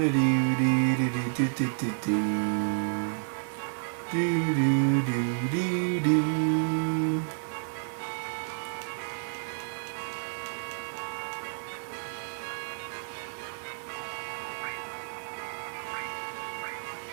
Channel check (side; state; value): left; silent; 58 dB below the other